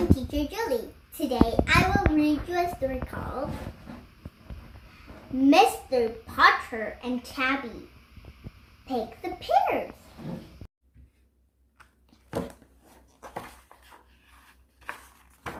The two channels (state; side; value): identical; both; correlation 1.00